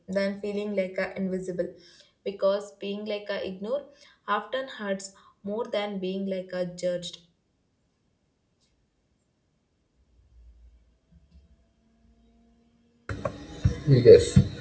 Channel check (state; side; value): identical; both; correlation 1.00